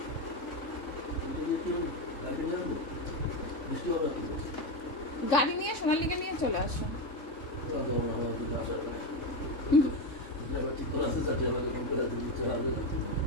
গাড়ি নিয়ে সোনালীকে নিয়ে চলে আসো।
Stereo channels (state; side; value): late; right; 3.6 ms